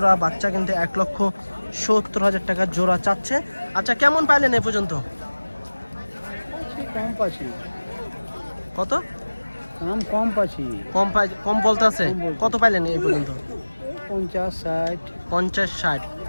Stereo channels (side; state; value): both; inverted; correlation -1.00